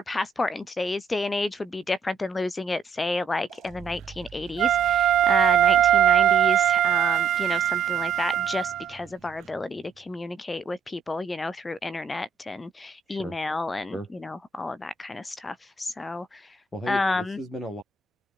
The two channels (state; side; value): quieter; left; 5.3 dB